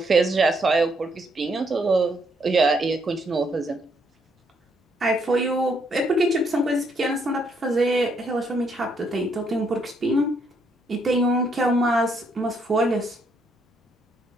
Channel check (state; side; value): normal; both; correlation 0.73